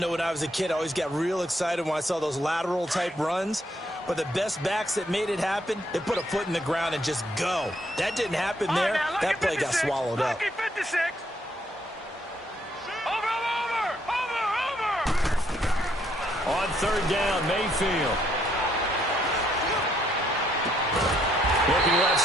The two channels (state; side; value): normal; both; correlation 0.71